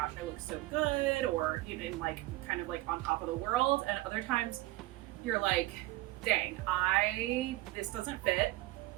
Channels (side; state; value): left; quieter; 18.3 dB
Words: I look so good, or you know, like kind of like on top of the world, and other times you're like, dang, this doesn't fit